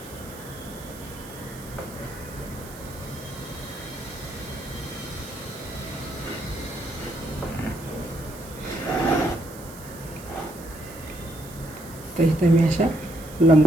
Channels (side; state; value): right; noise; hiss, 17 dB below the sound